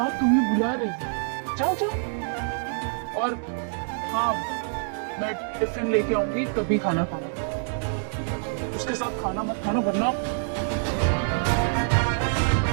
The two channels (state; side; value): silent; left; digital silence